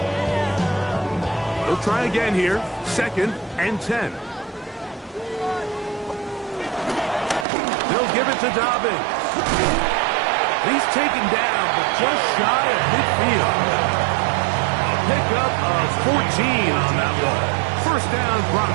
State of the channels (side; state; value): left; drops out; at 7.5 s